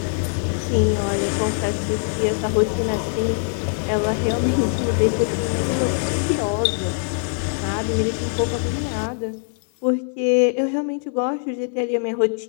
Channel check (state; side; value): silent; right; 64 dB below the other